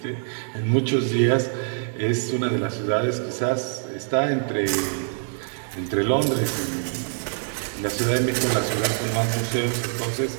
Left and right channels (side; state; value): left; silent; digital silence